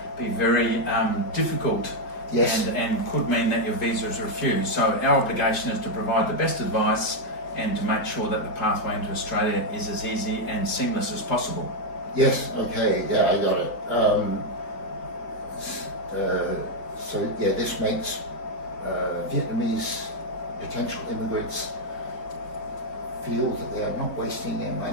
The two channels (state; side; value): late; right; 4.3 ms